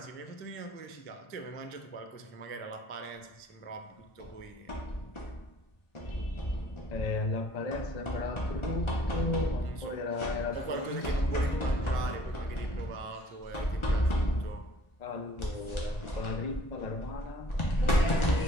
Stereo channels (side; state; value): right; late; 1.4 ms